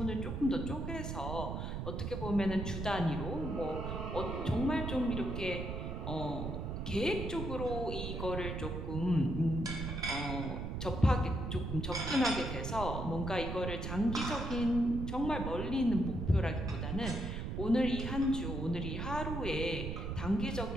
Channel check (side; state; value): right; noise; rumble, 4 dB below the sound